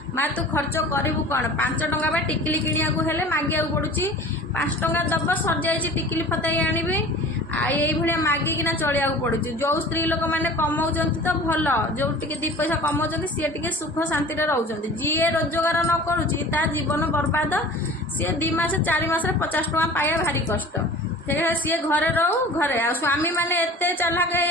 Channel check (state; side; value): normal; both; correlation 0.42